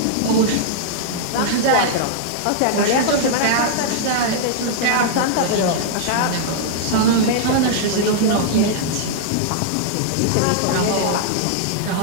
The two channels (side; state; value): both; different; correlation -0.01